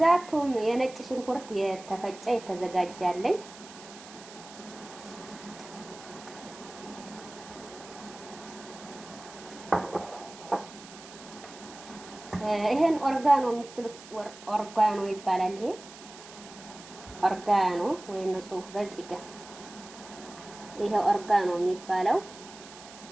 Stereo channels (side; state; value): right; noise; hiss, 17 dB below the sound